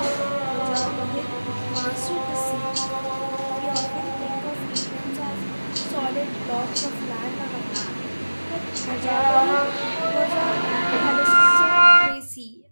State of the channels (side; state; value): both; inverted; correlation -1.00